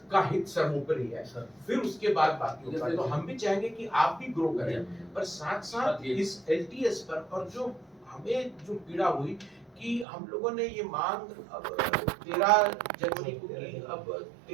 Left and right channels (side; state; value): left; drops out; at 10.1 s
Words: का हित सर्वोपरि है, फिर उसके बाद बाकी होगा। तो हम भी चाहेंगे कि आप भी ग्रो करें, पर साथ साथ इस LTS पर, और जो हमें जो पीड़ा हुई कि हम लोगों ने ये मांग अब 13 जनवरी को की, अब